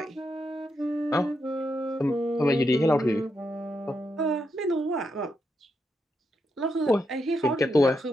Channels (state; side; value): normal; both; correlation 0.83